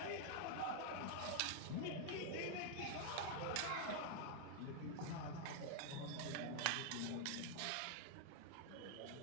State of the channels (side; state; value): both; different; correlation 0.00